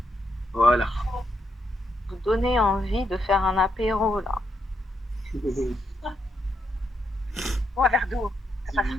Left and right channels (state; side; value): normal; both; correlation 0.80